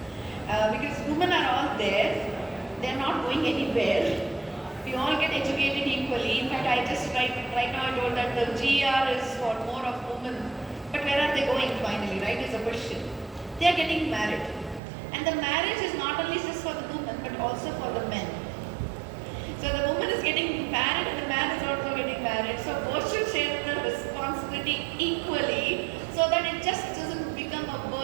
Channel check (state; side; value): drops out; left; at 14.8 s